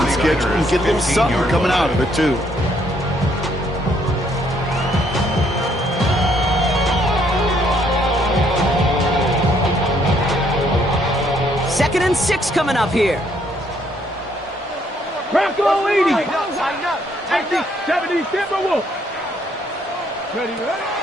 schedule and get a little something coming out of it, too. Second and 6 coming up here. Bronco 80. 70 Timberwolves. Ready?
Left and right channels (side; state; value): both; normal; correlation 0.69